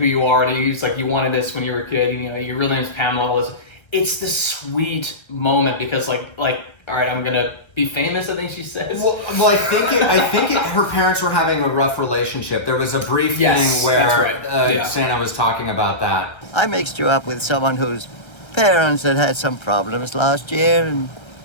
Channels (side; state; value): right; late; 1.3 ms